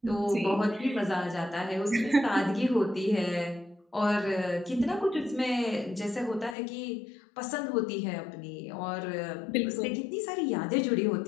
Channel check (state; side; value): drops out; right; at 6.6 s